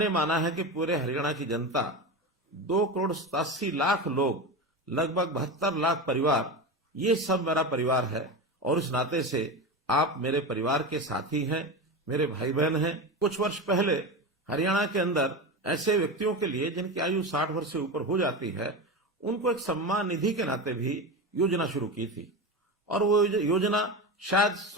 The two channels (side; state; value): both; normal; correlation 0.22